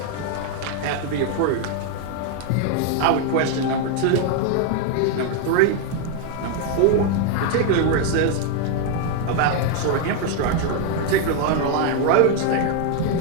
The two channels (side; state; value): both; different; correlation 0.00